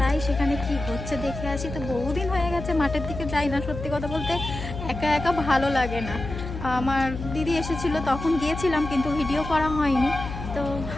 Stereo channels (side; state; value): left; noise; hum, 8 dB below the sound